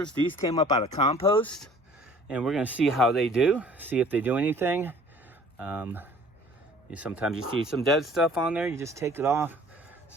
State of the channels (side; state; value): both; normal; correlation 0.51